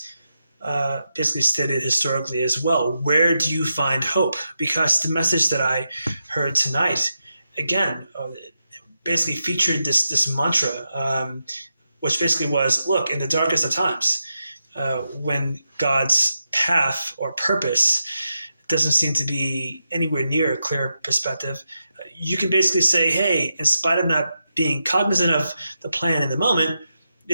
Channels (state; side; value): inverted; both; correlation -0.87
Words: basically stated historically as well. Where do you find hope? Because the message that I heard tonight, again, basically featured this mantra, which basically was, look, in the darkest of times, when God's path or purpose doesn't seem to be anywhere near a clear perspective, you can basically say, hey, in spite of not being cognizant of the plan in the moment,